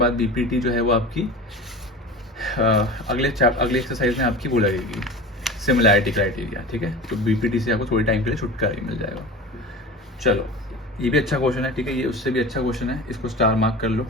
BPT जो है वो आपकी अगले एक्सरसाइज में आपकी वो लगेगी सिमिलैरिटी क्राइटेरिया, ठीक है। तो BPT से आपको थोड़े टाइम के लिए छुटकारा ही मिल जाएगा। चलो, ये भी अच्छा क्वेश्चन है, ठीक है, ये उससे भी अच्छा क्वेश्चन है, इसको स्टार मार्क कर लो,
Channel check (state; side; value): normal; both; correlation 0.33